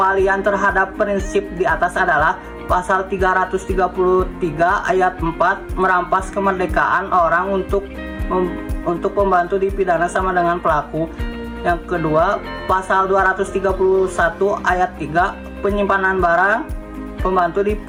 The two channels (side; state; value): both; identical; correlation 1.00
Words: terhadap prinsip di atas adalah pasal 333 ayat 4 merampas kemerdekaan orang untuk pembantu dipidana sama dengan pelaku. Yang kedua, pasal 231 ayat 3 penyimpanan barang pembantu